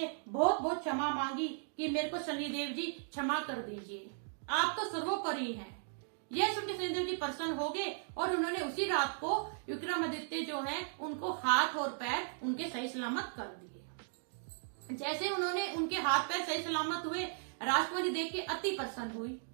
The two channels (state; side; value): silent; left; digital silence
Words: बहुत बहुत क्षमा मांगी कि मेरे को शनिदेव जी क्षमा कर दीजिए, आप तो सर्वोपरि हैं। यह सुन के शनिदेव जी प्रसन्न हो गए और उन्होंने उसी रात को विक्रमादित्य जो है उनको हाथ और पैर उनके सही सलामत कर दिए। जैसे उन्होंने उनके हाथ पैर सही सलामत हुए, राजकुमारी देख के अति प्रसन्न हुई